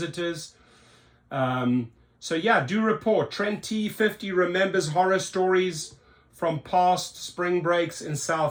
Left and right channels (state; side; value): identical; both; correlation 1.00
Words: So yeah, do report. Trent T50 remembers horror stories from past spring breaks in